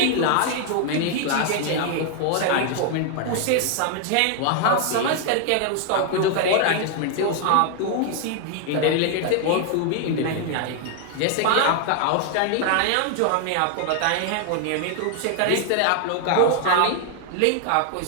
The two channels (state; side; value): different; both; correlation 0.00